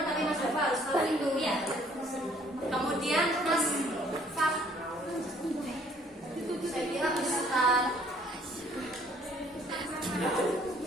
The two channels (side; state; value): both; normal; correlation 0.61